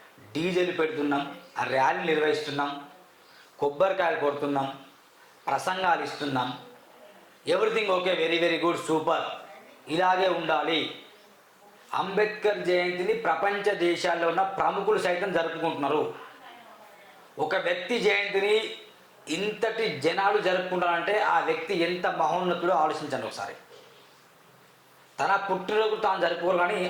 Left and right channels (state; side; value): identical; both; correlation 1.00